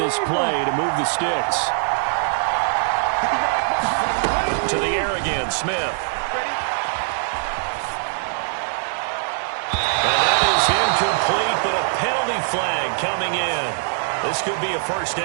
play to move the sticks. To the air again, Smith. And that is incomplete, but a penalty flag coming in. This could be a 1st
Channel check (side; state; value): left; silent; digital silence